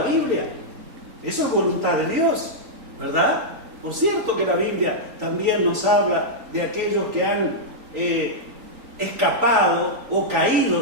Biblia. Eso es voluntad de Dios, ¿verdad? Por cierto que la Biblia también nos habla de aquellos que han escapado o caído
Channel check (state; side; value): late; left; 3.9 ms